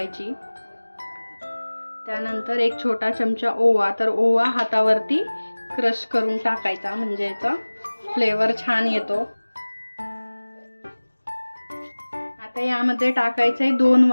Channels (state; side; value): inverted; both; correlation -1.00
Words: त्यानंतर एक छोटा चमचा ओवा। तर ओवा हातावरती क्रश करून टाकायचा, म्हणजे याचा फ्लेवर छान येतो। आता यामध्ये टाकायचंय 2